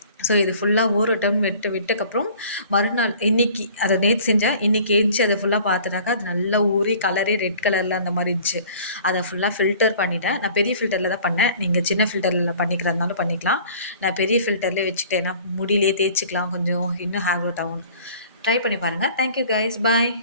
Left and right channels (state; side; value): inverted; both; correlation -0.49